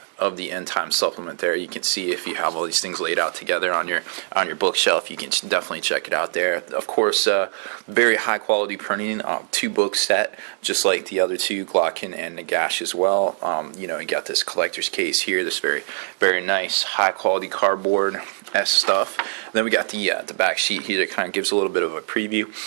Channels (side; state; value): left; silent; digital silence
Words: the End Times supplement. There, you can see if you have all these things laid out together on your bookshelf. You can definitely check it out there. Of course, very high quality printing, 2-book set, just like the other two, Glocken and Nagash as well. You got this collector's case here, this very nice high quality cardboard stuff. Then we got the back sheet here that kind of gives a little bit of a preview